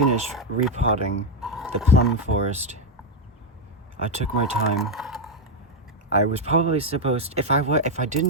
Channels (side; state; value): both; normal; correlation 0.03